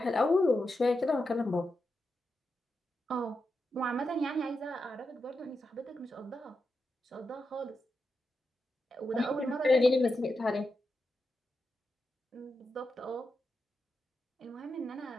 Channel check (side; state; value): both; normal; correlation 0.87